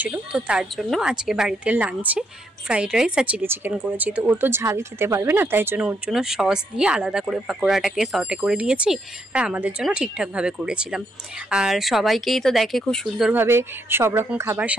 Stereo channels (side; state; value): both; normal; correlation 0.76